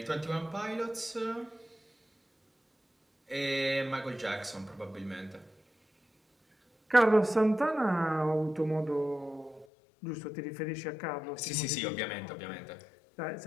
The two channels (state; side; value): drops out; right; at 9.7 s